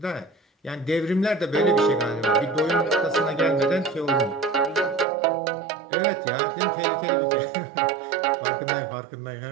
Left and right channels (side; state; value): left; drops out; at 5.1 s